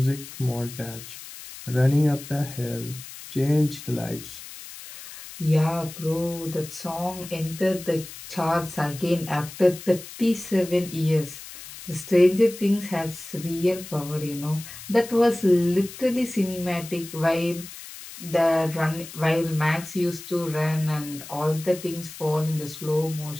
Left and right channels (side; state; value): left; noise; hiss, 14 dB below the sound